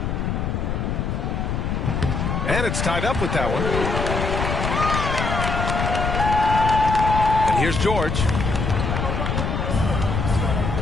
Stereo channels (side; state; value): left; noise; rumble, 1 dB below the sound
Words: And it's tied up with that one. And here's George.